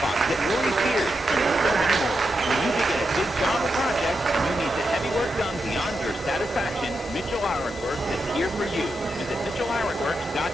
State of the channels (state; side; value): normal; both; correlation 0.86